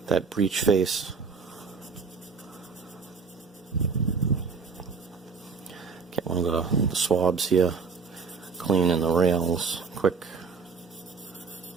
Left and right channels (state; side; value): quieter; left; 5.1 dB